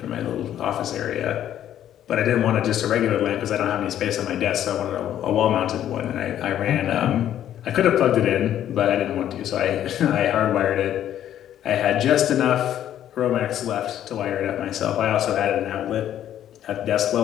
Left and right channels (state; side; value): quieter; right; 11.1 dB